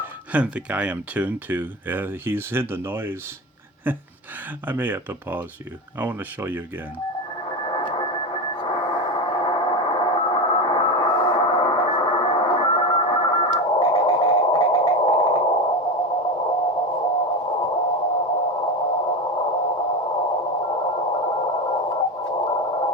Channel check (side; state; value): both; normal; correlation 0.21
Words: And the guy I'm tuned to, he's in the noise. I may have to pause you. I want to show you again.